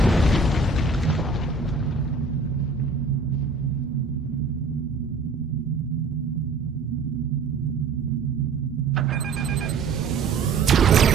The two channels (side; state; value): left; quieter; 4.2 dB